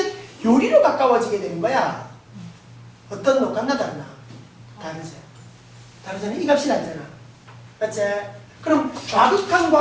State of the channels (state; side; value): identical; both; correlation 1.00